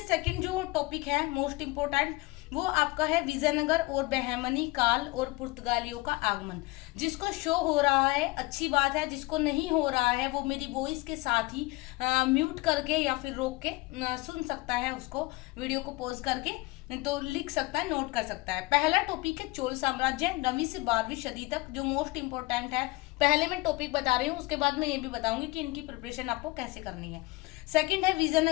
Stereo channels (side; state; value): right; quieter; 22.4 dB